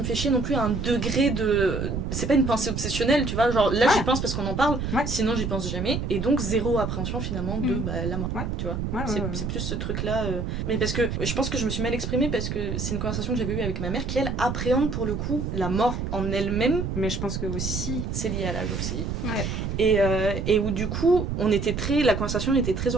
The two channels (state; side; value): noise; right; rumble, 3 dB below the sound